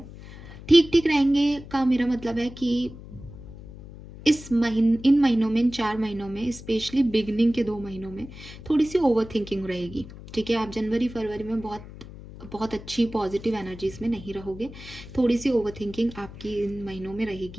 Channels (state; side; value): noise; left; hum, 15 dB below the sound